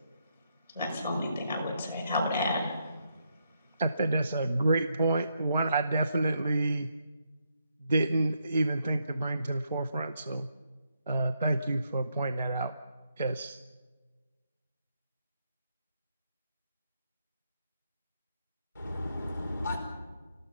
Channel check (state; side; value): inverted; both; correlation -0.78